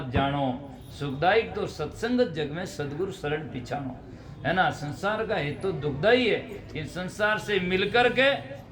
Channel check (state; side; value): identical; both; correlation 1.00